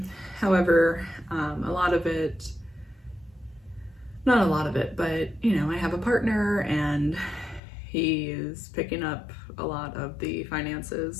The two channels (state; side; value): drops out; right; at 7.6 s